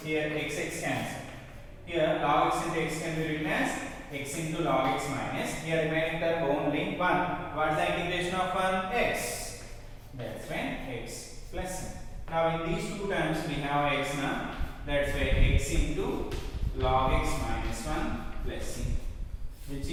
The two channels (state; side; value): identical; both; correlation 1.00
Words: Here x cancel. Here log x into x can be written as x into log x minus. Here remaining term only 1. What is the integration of 1? X. That's when x plus n. Now in these two terms we have x now. That's why x into log x minus 1 plus c, which